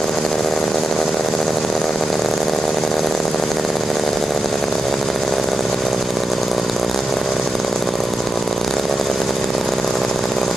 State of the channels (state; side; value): normal; both; correlation 0.88